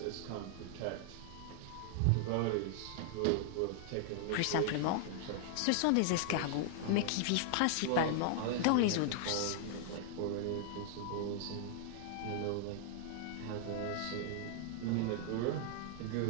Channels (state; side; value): different; both; correlation -0.01